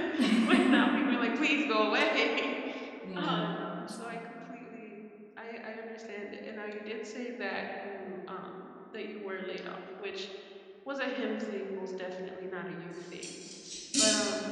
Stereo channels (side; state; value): both; identical; correlation 1.00